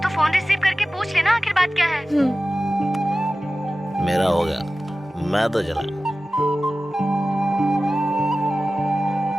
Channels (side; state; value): both; normal; correlation 0.95